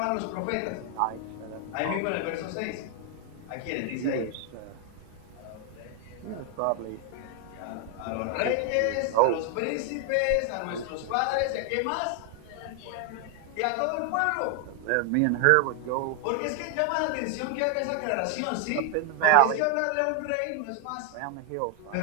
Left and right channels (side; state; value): both; different; correlation 0.00